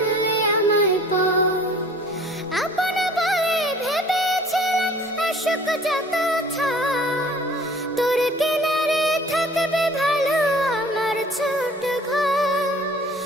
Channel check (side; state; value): both; normal; correlation 0.50